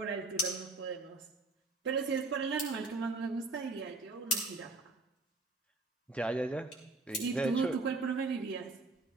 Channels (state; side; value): quieter; left; 3.2 dB